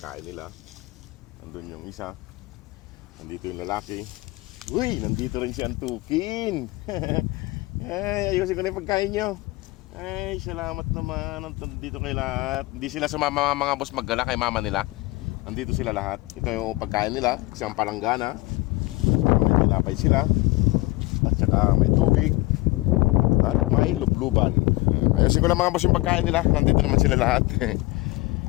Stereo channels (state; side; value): quieter; right; 21.4 dB